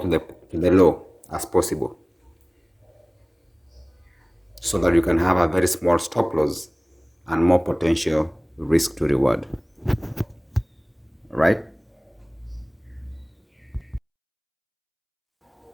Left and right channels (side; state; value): both; identical; correlation 1.00